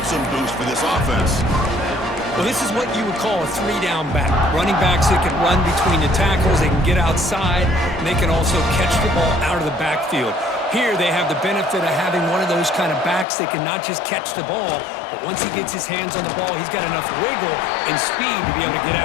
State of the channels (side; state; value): right; drops out; at 13.2 s